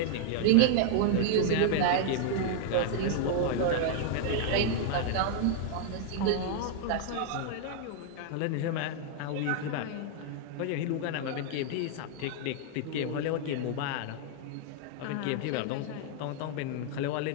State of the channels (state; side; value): different; both; correlation -0.01